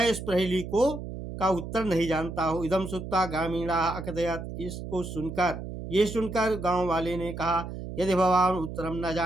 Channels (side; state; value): right; noise; hum, 8 dB below the sound